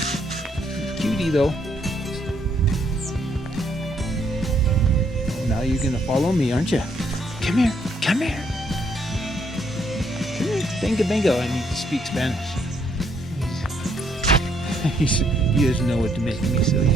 Cutie, though. Now you're going to follow me, aren't you? Come here. Come here. Come here. Bingo, bingo. I need to speak Spanish. He doesn't know what to make me, so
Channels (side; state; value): both; normal; correlation 0.71